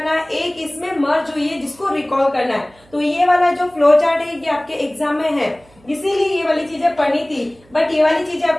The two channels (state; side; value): noise; right; hum, 29 dB below the sound